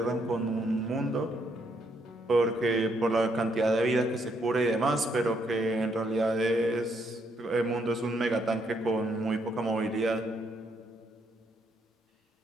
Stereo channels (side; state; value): both; normal; correlation 0.73